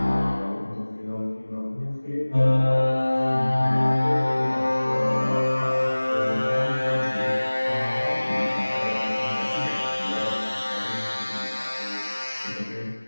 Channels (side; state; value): both; inverted; correlation -1.00